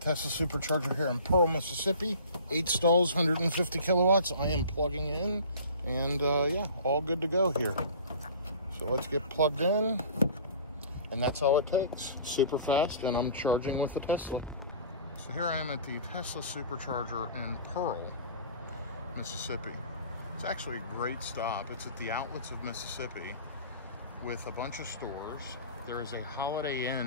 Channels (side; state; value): both; inverted; correlation -0.44